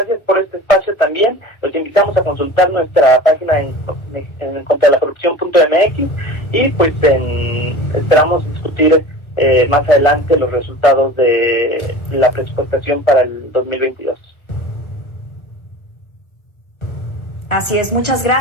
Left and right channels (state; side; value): late; right; 1.3 ms